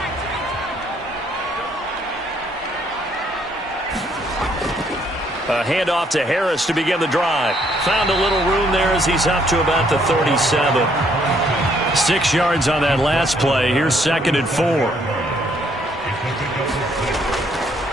A handoff to Harris to begin the drive. Found a little room there as he's up to about the 37. 6 yards on that last play. Here's 2nd and 4.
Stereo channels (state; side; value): normal; both; correlation 0.68